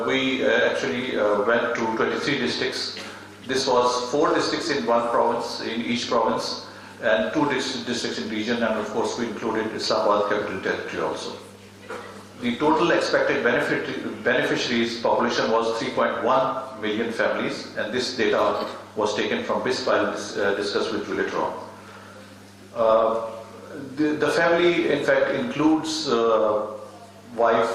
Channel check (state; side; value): identical; both; correlation 1.00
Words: actually went to 23 districts. This was 4 districts in one province, in each province, and 2 districts in region, and of course we included Islamabad Capital Territory also. The total expected beneficiaries population was 3.1 million families, and this data was taken from BISP. I'll discuss with you later on. The family, in fact, includes wife,